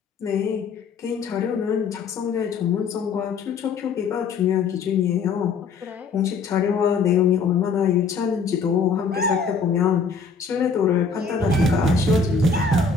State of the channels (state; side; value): quieter; right; 4.9 dB